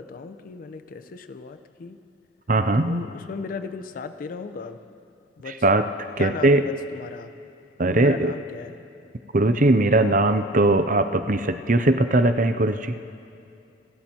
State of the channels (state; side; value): normal; both; correlation 0.43